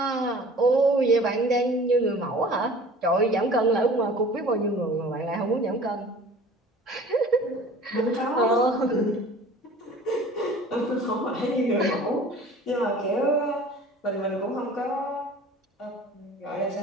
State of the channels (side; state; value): both; normal; correlation 0.45